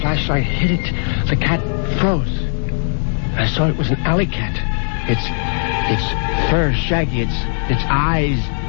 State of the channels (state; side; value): silent; right; 67 dB below the other